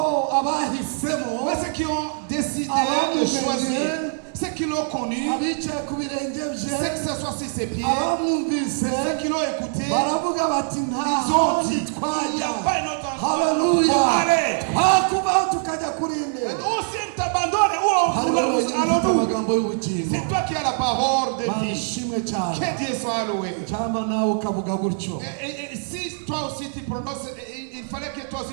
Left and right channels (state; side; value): silent; left; 63 dB below the other